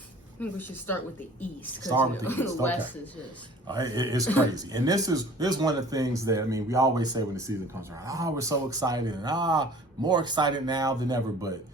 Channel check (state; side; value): normal; both; correlation 0.48